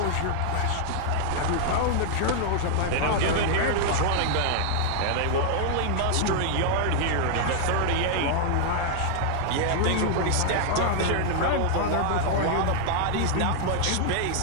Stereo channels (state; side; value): different; both; correlation -0.01